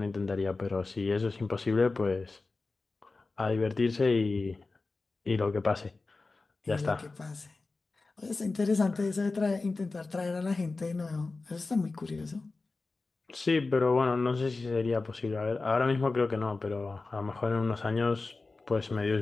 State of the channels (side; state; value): right; quieter; 3.7 dB